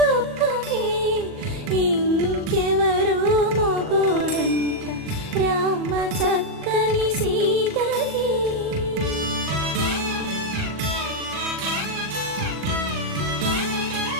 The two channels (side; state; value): left; late; 40 ms